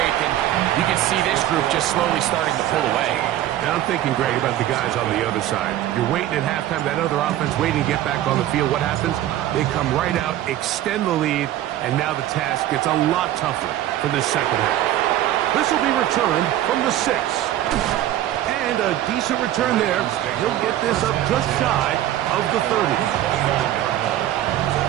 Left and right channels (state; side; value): quieter; left; 13.1 dB